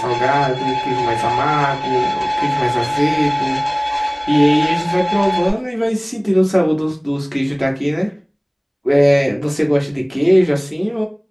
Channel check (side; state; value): both; identical; correlation 1.00